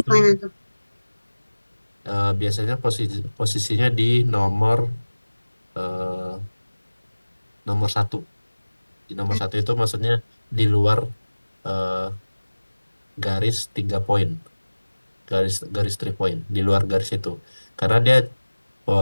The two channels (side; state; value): both; inverted; correlation -1.00